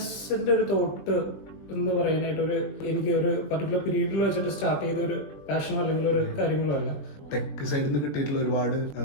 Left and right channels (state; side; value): late; right; 21 ms